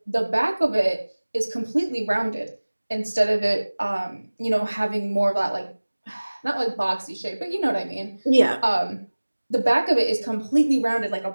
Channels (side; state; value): both; inverted; correlation -1.00